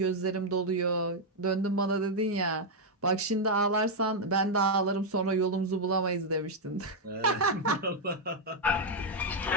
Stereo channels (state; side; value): normal; both; correlation -0.01